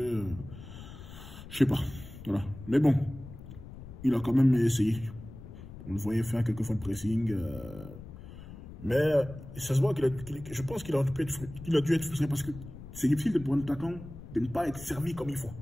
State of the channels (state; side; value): noise; left; rumble, 14 dB below the sound